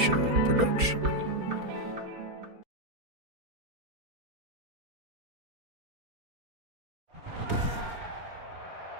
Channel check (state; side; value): late; left; 4.3 ms